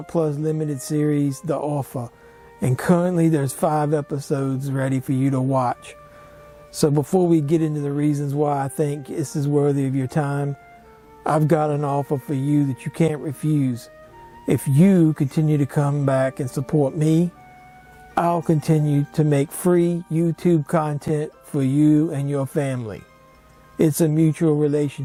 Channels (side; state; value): both; identical; correlation 1.00